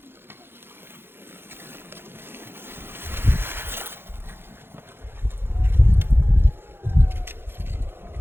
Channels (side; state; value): left; late; 0.11 ms